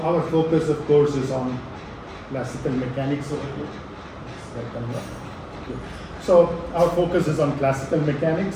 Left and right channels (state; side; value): identical; both; correlation 1.00